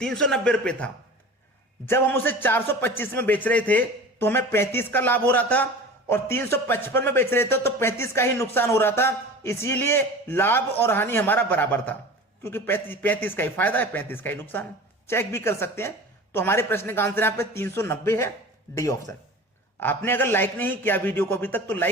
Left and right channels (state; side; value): normal; both; correlation 0.37